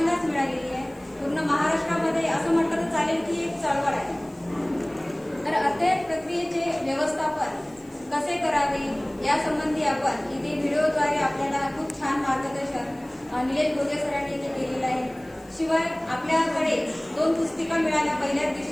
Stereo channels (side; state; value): left; noise; hiss, 29 dB below the sound